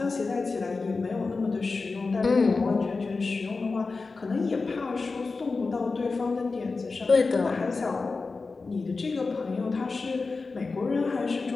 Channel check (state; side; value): quieter; right; 4.1 dB